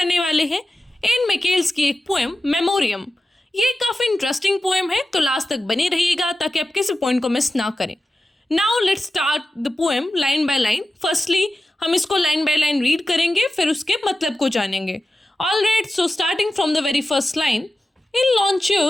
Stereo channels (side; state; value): both; normal; correlation 0.93